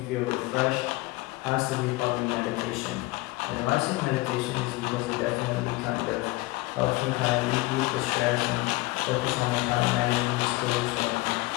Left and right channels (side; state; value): right; quieter; 21.0 dB